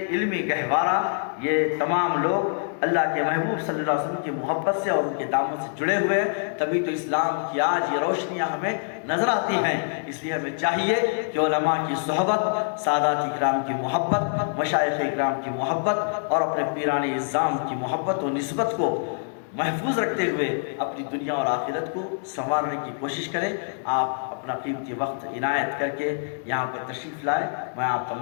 علمی گہوارہ، یہ تمام لوگ اللہ کے محبوب صلی اللہ علیہ وسلم کی محبت سے اور ان کے دامن سے جڑے ہوئے ہیں، تبھی تو اسلام کی آج یہ روشنیاں ہمیں نظر آتی ہیں۔ اس لیے ہمیں چاہیے کہ علماء کی صحبت، سادات اکرام کی محبت، مشائخ اکرام کی محبت اور اپنے پیران اعظام کی محبت و نسبت کو محفوظ رکھتے ہوئے اپنی دنیا اور آخرت کو سنوارنے کی کوشش کریں۔ آپ اپنا قیمتی وقت عنایت کر کے یہاں پر تشریف لائے، میں آپ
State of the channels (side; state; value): right; silent; digital silence